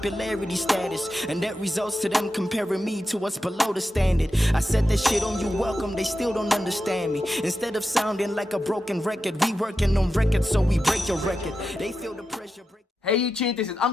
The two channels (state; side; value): normal; both; correlation 0.90